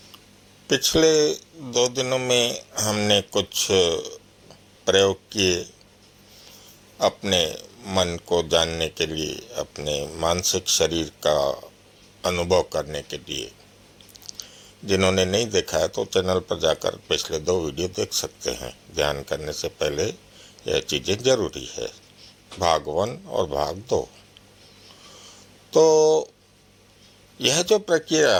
पिछले 2 दिनों में हमने कुछ प्रयोग किए अपने मन को जानने के लिए, अपने मानसिक शरीर का अनुभव करने के लिए। जिन्होंने नहीं देखा है तो चैनल पर जाकर पिछले 2 वीडियो देख सकते हैं। ध्यान करने से पहले यह चीज़ें जरूरी है, भाग 1 और भाग 2। तो यह जो प्रक्रिया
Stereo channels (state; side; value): identical; both; correlation 1.00